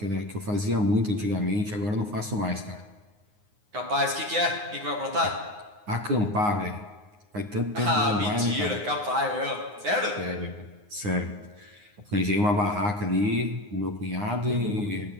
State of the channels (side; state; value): left; late; 9.6 ms